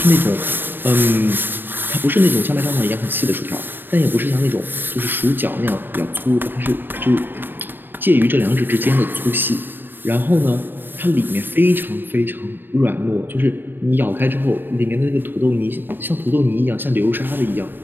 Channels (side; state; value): left; late; 0.095 ms